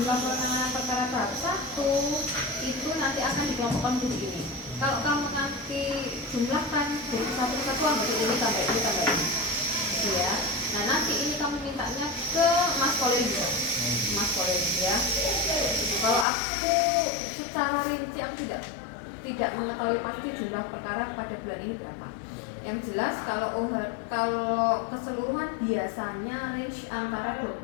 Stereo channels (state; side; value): drops out; right; at 16.2 s